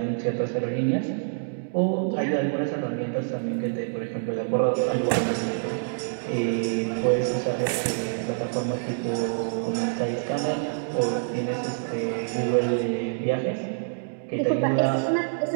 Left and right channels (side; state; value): left; silent; digital silence